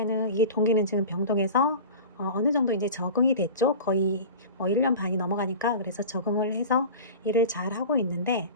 이 동기는 지금 병동에서 어느 정도 이제 적응이 됐죠. 거의 1년 반이 넘어가니까 그래서 적응을 해서 일을 잘 하고 있는데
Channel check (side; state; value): both; inverted; correlation -0.35